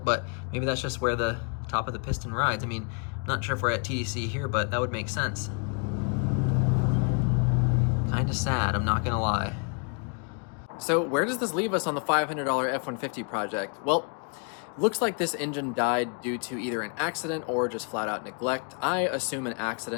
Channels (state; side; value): quieter; right; 39.0 dB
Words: but maybe that's just where the top of the piston rides. I mean, not sure if we're at TEC here, but that would make sense. Kind of sad, I'm not gonna lie. So where does this leave us on the $500 F-150 project? Well, looks like this engine died due to either an accident or just flat out neglect. I assume an